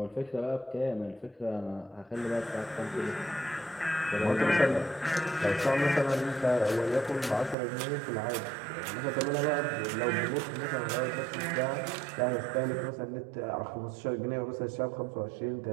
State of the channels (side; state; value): left; drops out; at 7.6 s